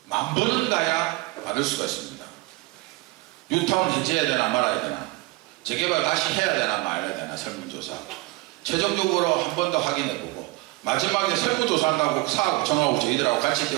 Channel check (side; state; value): left; quieter; 21.9 dB